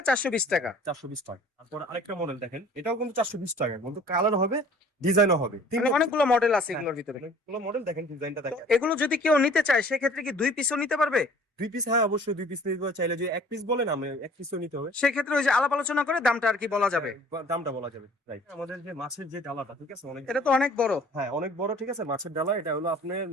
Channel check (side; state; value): both; normal; correlation 0.51